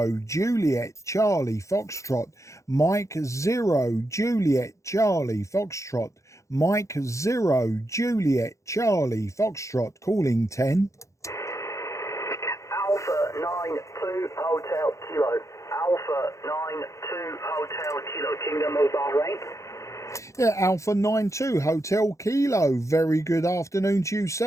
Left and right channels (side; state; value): right; late; 0.15 ms